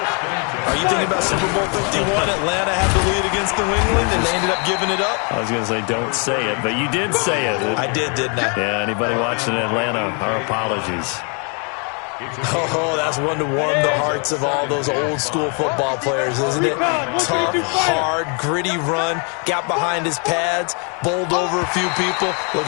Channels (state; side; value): quieter; right; 37.4 dB